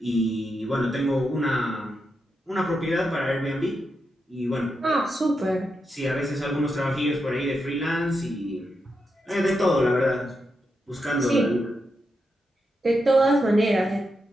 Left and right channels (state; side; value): normal; both; correlation 0.85